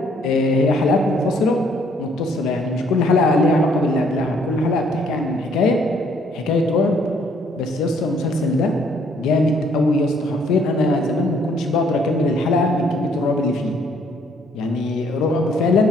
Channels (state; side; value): normal; both; correlation 0.65